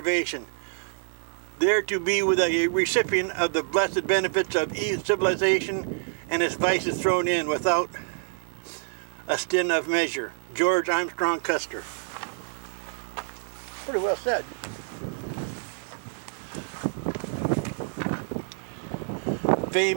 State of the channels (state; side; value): silent; left; 60 dB below the other